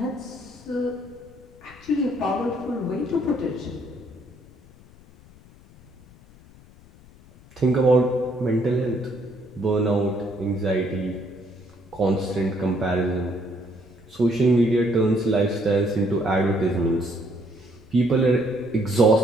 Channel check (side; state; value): left; noise; rumble, 24 dB below the sound